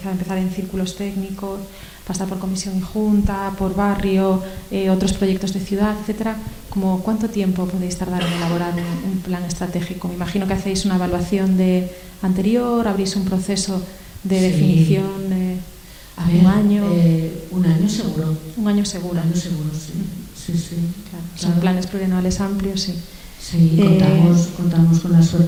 empezar en círculos técnicos, pasar por comisión y junta, por barrio, otros proyectos de ciudad, etcétera, ¿cuánto tiempo podéis tardar en elaborar un plan estratégico? Me imagino que hacéis una evaluación anterior, abrís un proceso de definición de un año. Un año seguro. Un año seguro. Un año seguro, sí. Claro. Son planes plurianuales amplios, sí. Sí, contamos con la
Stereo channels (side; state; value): both; identical; correlation 1.00